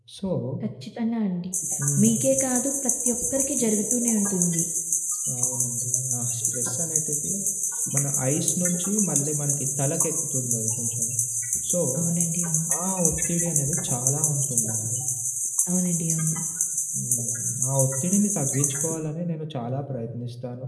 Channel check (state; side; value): identical; both; correlation 1.00